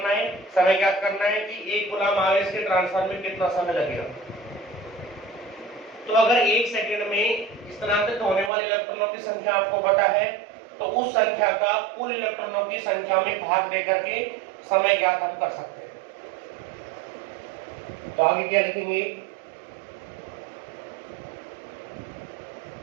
है, समय ज्ञात करना है कि 1 कूलम आवेश के ट्रांसफर में कितना समय लगेगा। तो अगर 1 सेकंड में स्थानांतरित होने वाले इलेक्ट्रॉनों की संख्या आपको पता है तो उस संख्या का कुल इलेक्ट्रॉनों की संख्या में भाग देकर के समय ज्ञात हम कर सकते हैं। तो आगे क्या लिखेंगे,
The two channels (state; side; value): drops out; left; at 8.5 s